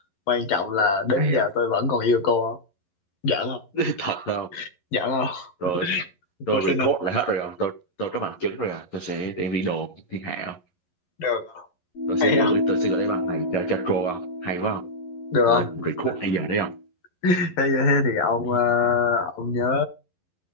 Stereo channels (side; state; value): right; late; 11 ms